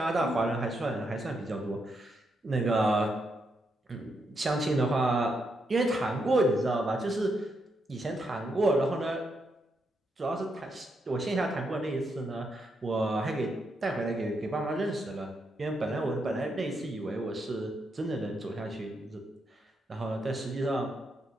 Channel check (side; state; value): both; normal; correlation 0.80